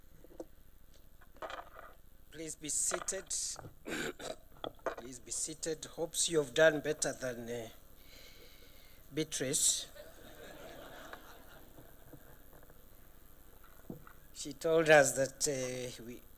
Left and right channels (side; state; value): both; identical; correlation 1.00